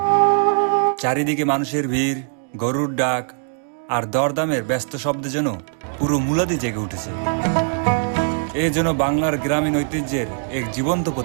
চারিদিকে মানুষের ভিড়, গরুর ডাক আর দরদামের ব্যস্ত শব্দে যেন পুরো মুলাদি জেগে উঠেছে। এ যেন বাংলার গ্রামীণ ঐতিহ্যের এক জীবন্ত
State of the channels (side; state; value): left; silent; digital silence